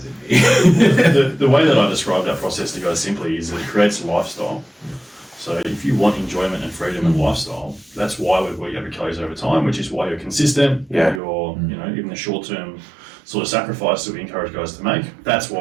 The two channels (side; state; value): left; drops out; at 11.2 s